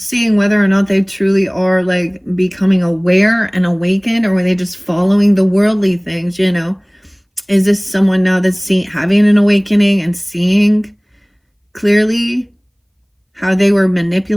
whether or not they truly are like becoming aware and awakened, or were they just following the worldly things, you know? Is this someone now that's having an awakening and seeing clearly how they were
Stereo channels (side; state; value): both; identical; correlation 1.00